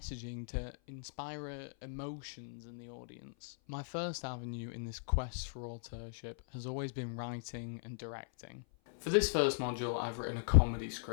to inspire emotions in the audience. My first avenue in this quest for authorship has always been writing and directing. For this first module, I've written a comedy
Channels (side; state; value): right; silent; 52 dB below the other